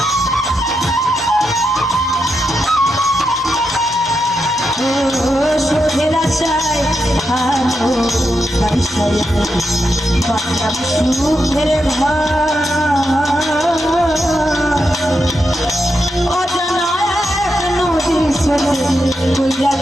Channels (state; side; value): normal; both; correlation 0.85